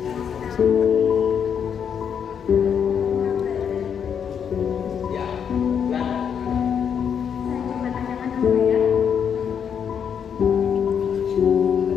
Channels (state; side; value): quieter; right; 7.7 dB